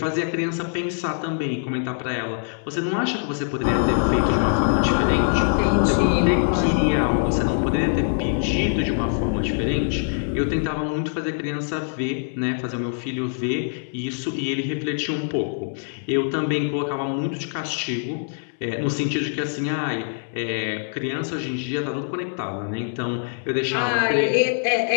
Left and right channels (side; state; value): right; silent; 63 dB below the other